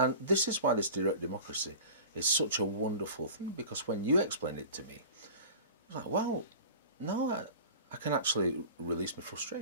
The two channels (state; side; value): inverted; both; correlation -0.38